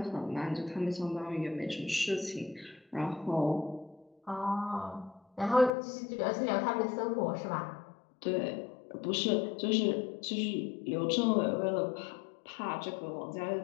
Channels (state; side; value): drops out; right; at 5.7 s